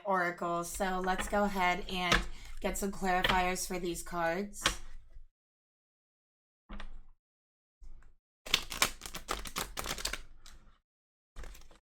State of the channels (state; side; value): identical; both; correlation 1.00